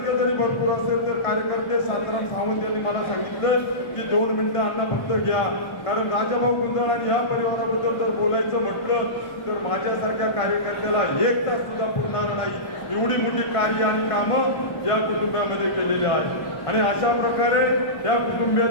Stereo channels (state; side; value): late; right; 1.5 ms